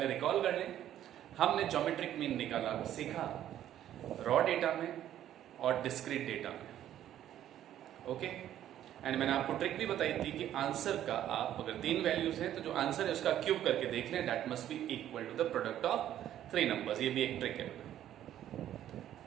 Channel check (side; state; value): left; quieter; 11.6 dB